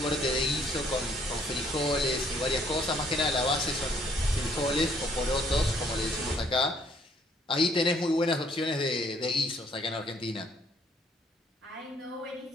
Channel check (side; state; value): both; normal; correlation 0.65